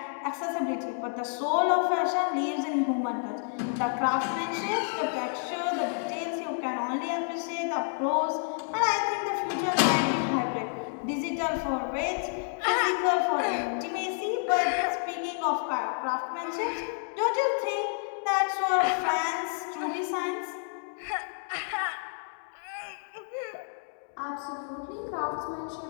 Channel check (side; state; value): right; silent; 58 dB below the other